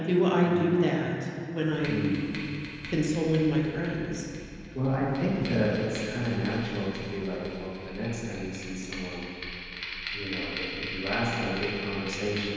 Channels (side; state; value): both; identical; correlation 1.00